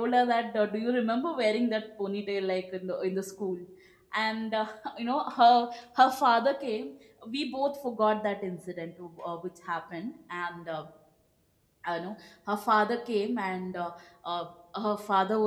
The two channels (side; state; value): both; identical; correlation 1.00